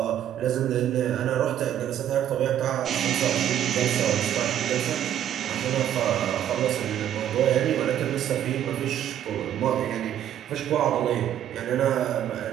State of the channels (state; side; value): quieter; left; 10.7 dB